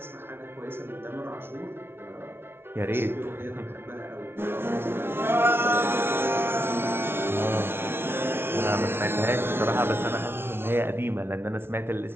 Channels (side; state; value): left; late; 0.11 ms